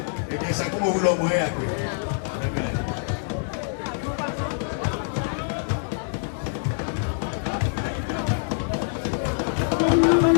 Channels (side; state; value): right; silent; 62 dB below the other